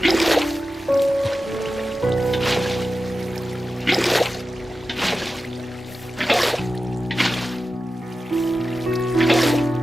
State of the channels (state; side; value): normal; both; correlation 0.93